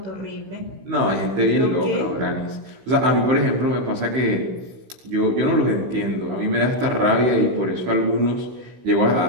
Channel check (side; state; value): left; late; 16 ms